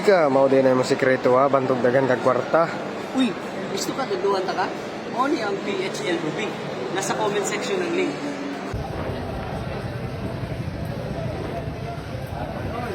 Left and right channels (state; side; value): identical; both; correlation 1.00